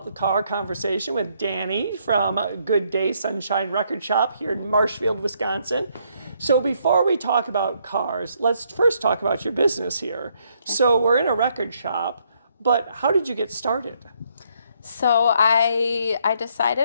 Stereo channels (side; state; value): both; inverted; correlation -0.72